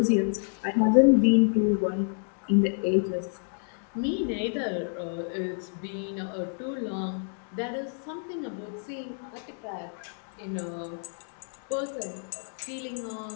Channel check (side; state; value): right; silent; 59 dB below the other